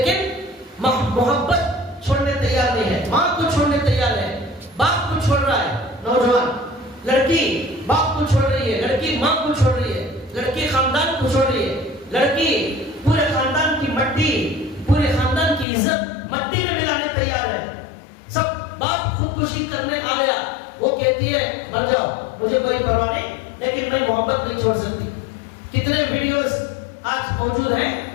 محبت چھوڑنے تیار نہیں ہے، ماں کو چھوڑنے تیار ہے، باپ کو چھوڑ رہا ہے، نوجوان لڑکی باپ کو چھوڑ رہی ہے، لڑکی ماں کو چھوڑ رہی ہے، لڑکی خاندان کو چھوڑ رہی ہے، لڑکی پورے خاندان کی مٹی، پورے خاندان کی عزت مٹی میں ملانے تیار ہے۔ سب باپ خودکشی کرنے آ گیا، وہ کہتی ہے مر جاؤ مجھے کوئی پرواہ نہیں، لیکن میں محبت نہیں چھوڑ سکتی۔ کتنے ویڈیوز آج موجود ہیں،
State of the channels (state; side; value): drops out; right; at 15.7 s